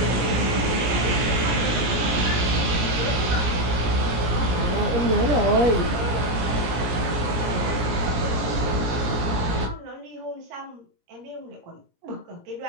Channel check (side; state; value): left; late; 17 ms